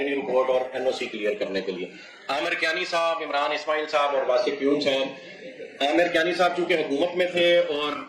رپورٹ اور NOC کلیئر کرنے کے لیے. عامر کیانی صاحب, عمران اسماعیل صاحب اور واسف پیون صاحب. عامر کیانی صاحب چونکہ حکومت میں تھے اور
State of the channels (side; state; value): both; identical; correlation 1.00